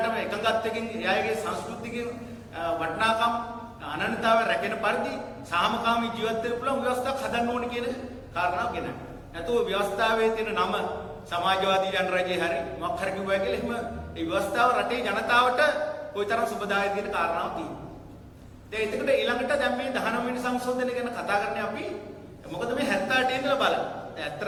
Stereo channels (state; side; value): identical; both; correlation 1.00